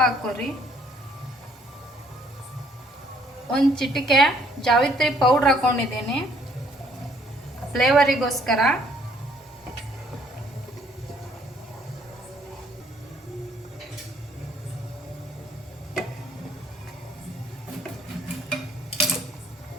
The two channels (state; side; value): normal; both; correlation 0.64